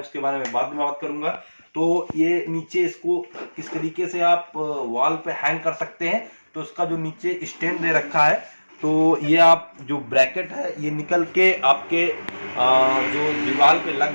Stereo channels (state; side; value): inverted; both; correlation -1.00